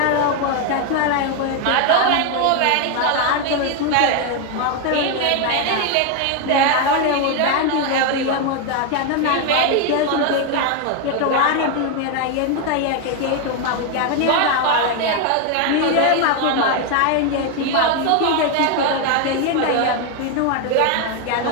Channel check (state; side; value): different; both; correlation 0.01